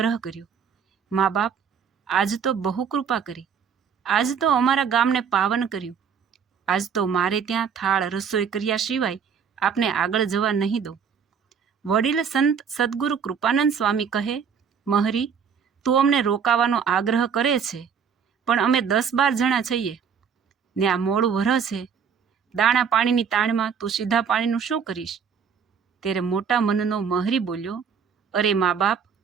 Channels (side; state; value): left; quieter; 6.9 dB